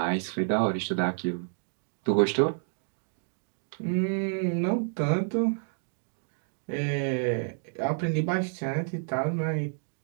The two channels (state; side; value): silent; left; digital silence